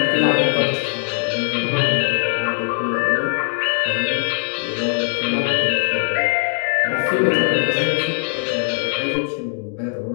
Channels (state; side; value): silent; right; 66 dB below the other